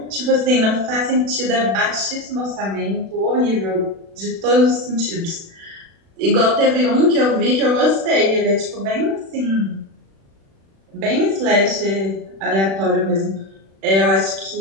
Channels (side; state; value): left; late; 36 ms